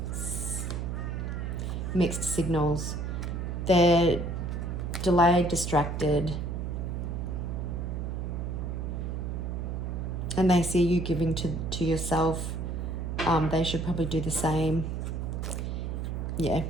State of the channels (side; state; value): right; noise; hum, 3 dB below the sound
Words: mixed signals. They're delayed, distracted, and they see you giving to yourself. They should probably do the same. Yeah,